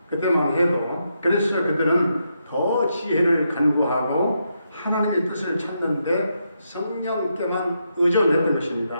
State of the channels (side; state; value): both; inverted; correlation -0.81